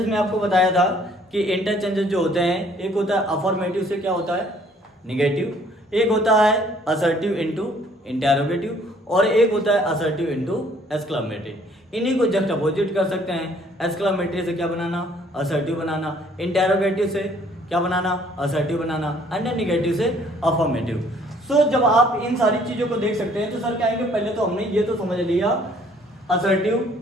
में आपको बताया था कि इंटरचेंजेस जो होते हैं, एक होता है अफर्मेटिव से क्या होता है निगेटिव, एक होता है असर्टिव इनटू इंटेरोगेटिव, और एक होता है असर्टिव इनटू एक्सक्लेमेटरी। इन्हीं को जस्ट अपोजिट कर सकते हैं। एक्सक्लेमेटरी से क्या बनाना, असर्टिव बनाना, इंटेरोगेटिव से क्या बनाना, असर्टिव बनाना, एंड निगेटिव से अफर्मेटिव। सो जब आप इन सारी चीजों को देख सकते हैं तो सर क्या है, पहले तो हमने ये तो समझ लिया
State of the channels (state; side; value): normal; both; correlation 0.60